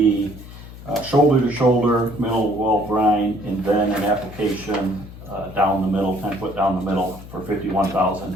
shoulder-to-shoulder mineral well brine, and then an application down the middle, 10 foot down the middle for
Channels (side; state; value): left; noise; hum, 15 dB below the sound